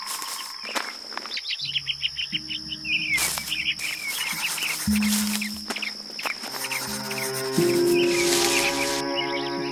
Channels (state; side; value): identical; both; correlation 1.00